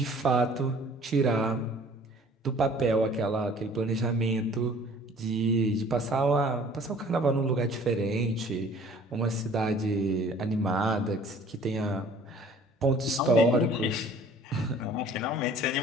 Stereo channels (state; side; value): normal; both; correlation 0.51